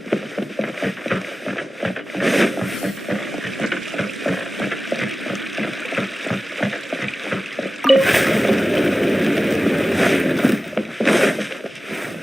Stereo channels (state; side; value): normal; both; correlation 0.95